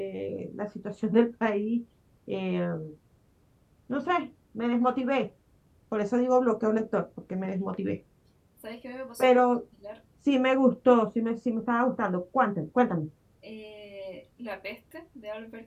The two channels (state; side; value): identical; both; correlation 1.00